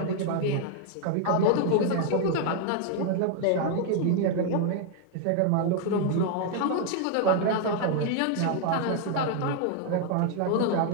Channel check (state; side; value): different; both; correlation 0.00